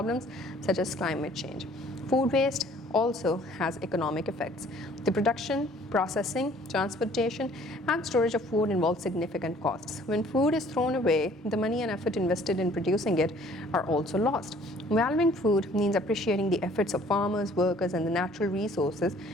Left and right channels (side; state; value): both; normal; correlation 0.56